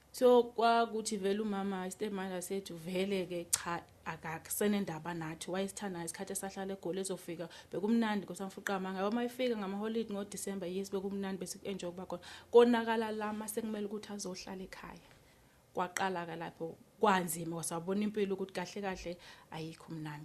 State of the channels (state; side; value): identical; both; correlation 1.00